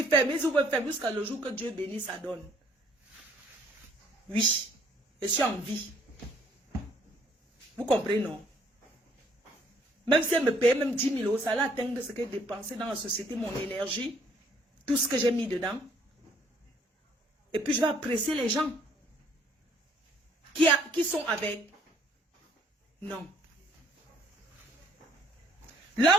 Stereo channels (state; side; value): normal; both; correlation 0.63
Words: ferment jusqu'à le jour que Dieu bénit, ça donne. Oui, je suis en vie. Vous comprenez, non? Même si elle me paye même 10 000 €, ça allait atteindre ce que j'ai dépensé dans la société, mon énergie, tout ce que j'ai mis dedans. Et puis je vais apprécier les gens qui sont avec. Non. Là